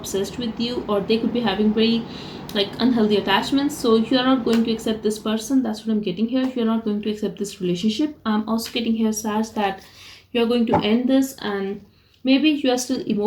with you, or they could be having very unhealthy attachments. So you are not going to accept this person. That's what I'm getting here. You are not going to accept this relationship. I'm also getting here, Sag, that you are going to end this, and maybe you are still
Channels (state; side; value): identical; both; correlation 1.00